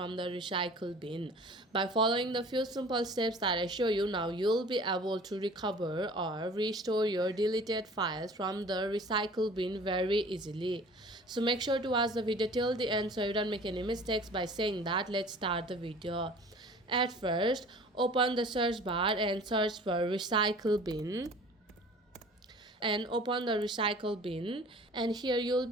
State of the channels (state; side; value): normal; both; correlation 0.46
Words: the recycle bin. By following the few simple steps that I show you now, you'll be able to recover or restore your deleted files from the recycle bin very easily. So make sure to watch the video till the end so you don't make any mistakes. By saying that, let's start the video. At first, open the search bar and search for recycle bin and open the recycle bin, and here you'll